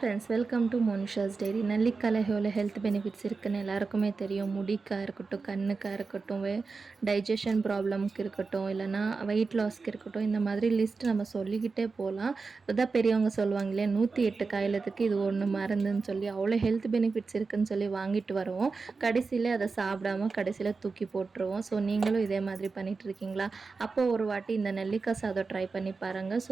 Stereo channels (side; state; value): left; quieter; 4.4 dB